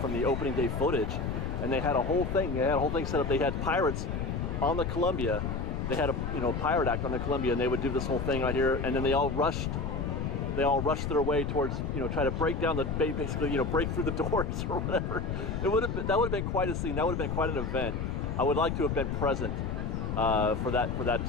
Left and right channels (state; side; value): noise; left; rumble, 2 dB below the sound